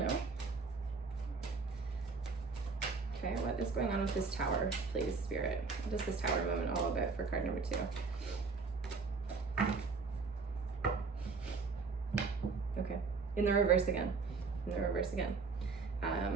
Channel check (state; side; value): quieter; left; 4.6 dB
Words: Okay, what is going on with this Tower, please, Spirit? What is this Tower moment all about for card number 2? Okay, in the reverse again. In the reverse again.